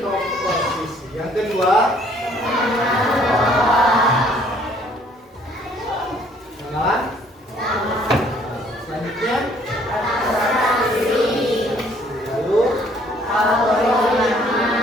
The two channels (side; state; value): both; normal; correlation 0.61